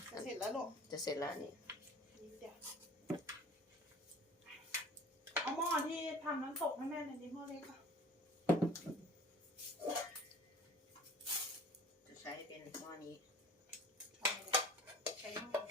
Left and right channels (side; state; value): both; normal; correlation 0.46